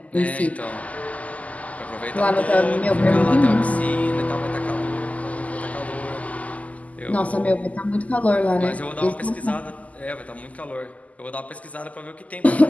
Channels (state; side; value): late; right; 0.073 ms